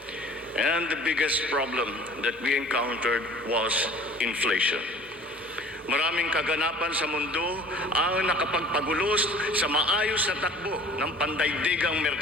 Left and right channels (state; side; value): normal; both; correlation 0.48